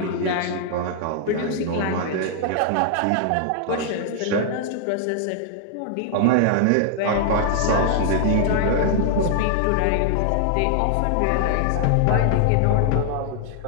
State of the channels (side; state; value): both; different; correlation -0.01